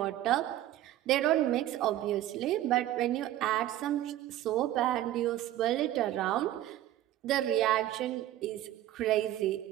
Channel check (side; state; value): left; quieter; 13.6 dB